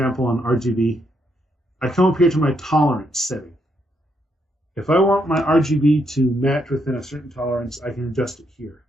on RGB, I come up here to my tolerance setting. If I want my RGB to match within a certain tolerance, I can adjust it here.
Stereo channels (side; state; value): both; normal; correlation 0.77